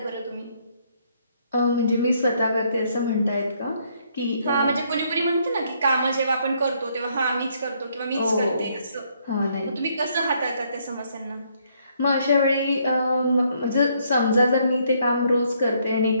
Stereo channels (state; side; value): inverted; both; correlation -0.70